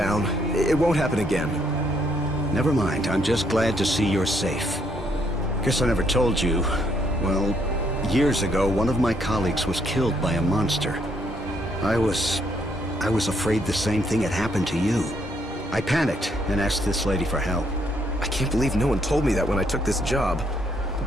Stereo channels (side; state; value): both; normal; correlation 0.71